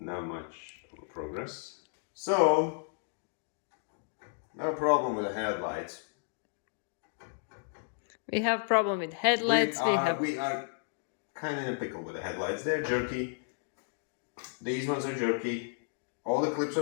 much progress. So, no problem with the headlights. We have problem with headlights. We are kind of in a pickle with the headlights. They're jerky. These ones are jerky. All the clips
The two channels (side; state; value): right; silent; digital silence